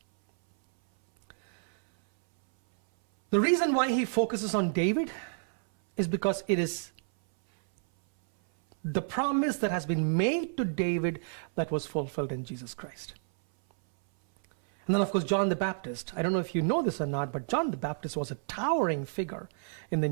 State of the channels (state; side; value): silent; left; 58 dB below the other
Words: The reason why he focuses on David is because it is the promise that has been made to David that was fulfilled in Jesus Christ. And then, of course, John the Baptist. I don't know if you know this or not, but John the Baptist was a towering figure in the